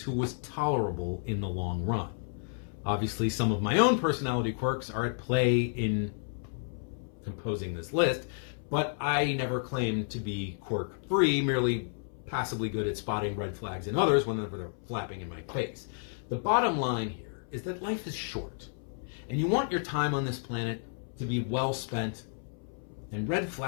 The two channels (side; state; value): right; silent; 57 dB below the other